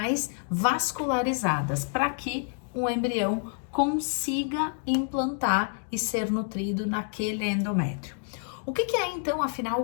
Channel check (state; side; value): silent; right; 59 dB below the other